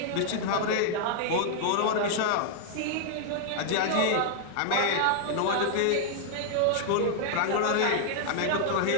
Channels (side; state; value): both; different; correlation -0.01